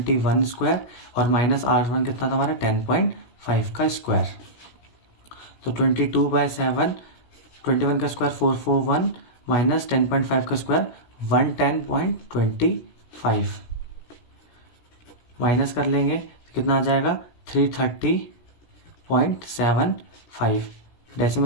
स्क्वायर और माइनस R1 कितना था हमारा 10.5 का स्क्वायर। तो 22/7, 21 का स्क्वायर 441 माइनस 10.5 का स्क्वायर 110.25, माइनस कर लेंगे तो कितना आ जाएगा 330.75।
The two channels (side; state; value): right; late; 17 ms